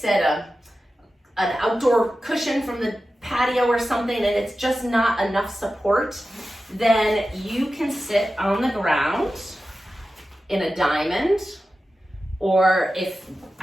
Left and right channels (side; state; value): both; normal; correlation 0.93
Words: an outdoor cushion from the patio or something, and it's just not enough support, then you can sit on the ground in a diamond, or if,